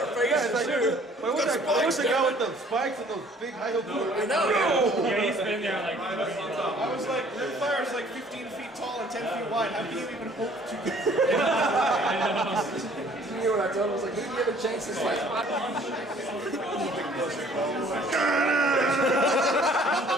face. Yeah, it's like, dude, what's the guy with the spikes and those big high heel boots? I know. Yeah, he's been there like. I was like, Rimfire is like 15 feet tall and 10 feet wide. How can you even hope to get? You know what I told him? I was like, maybe you have a chance to fight.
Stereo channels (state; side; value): normal; both; correlation 0.56